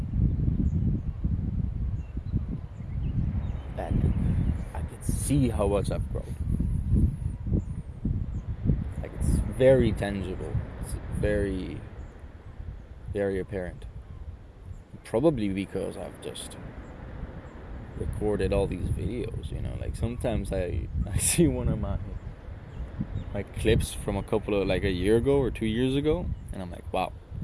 And I can see how much I've grown. Like, it's very tangible. It's very, very apparent. Probably because I've just recorded all these videos, you know. Like, sometimes I see one of my clips from a couple of, like, a year ago or 2 years ago, and I'm like, wow,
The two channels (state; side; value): identical; both; correlation 1.00